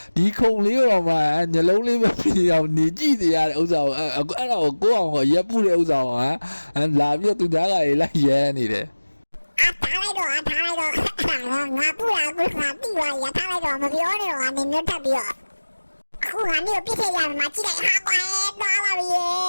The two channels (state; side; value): inverted; both; correlation -1.00